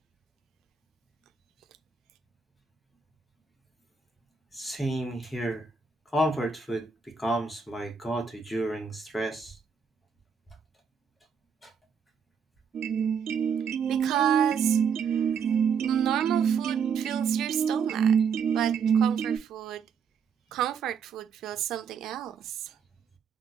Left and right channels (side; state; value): left; quieter; 6.4 dB